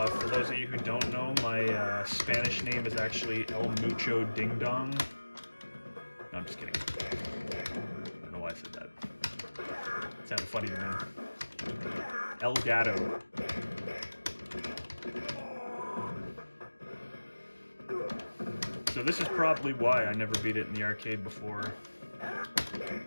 those of you who don't know, my Spanish name is actually El Mucho Ding Dong. No, I'm just kidding. I don't know why I said that. It sounded funny to me. El Gato. So this is probably why I never beat it in the arcade before.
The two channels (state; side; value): inverted; both; correlation -1.00